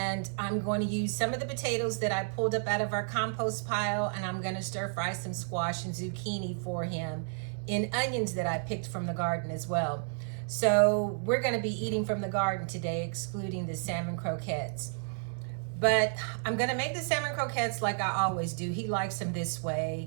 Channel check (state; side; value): silent; left; digital silence